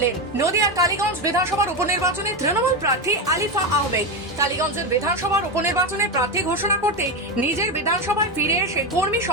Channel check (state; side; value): normal; both; correlation 0.13